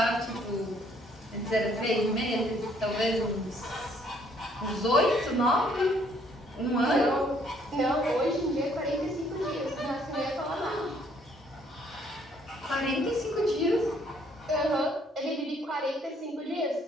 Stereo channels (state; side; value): normal; both; correlation 0.65